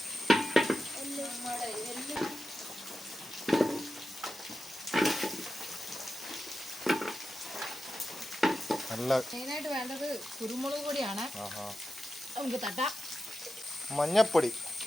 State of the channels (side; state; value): both; normal; correlation 0.91